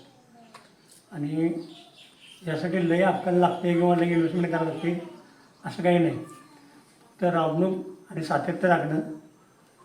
आणि यासाठी लय अक्कल लागते किंवा लय इन्व्हेस्टमेंट करावं लागते असं काही नाही. तर राबणूक आणि सातत्य राखणं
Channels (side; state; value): both; identical; correlation 1.00